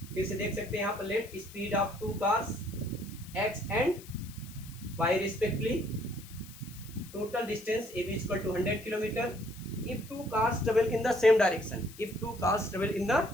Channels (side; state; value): left; noise; hiss, 18 dB below the sound